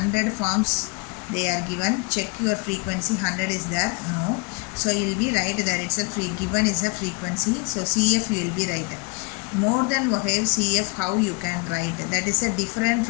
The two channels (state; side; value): quieter; right; 28.8 dB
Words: farms they are given. Check your frequency. 100 is there? No. So you will be right there itself. Given is a frequency. So CF you will be right. More than Ogive, CF how you can write. That is a different